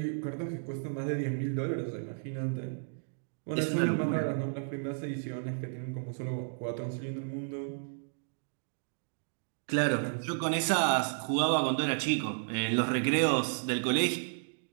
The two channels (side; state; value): left; silent; digital silence